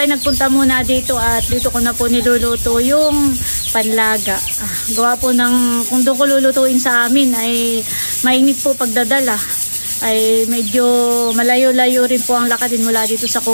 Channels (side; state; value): both; inverted; correlation -1.00